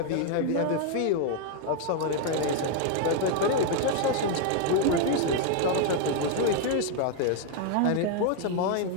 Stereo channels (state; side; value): different; both; correlation 0.00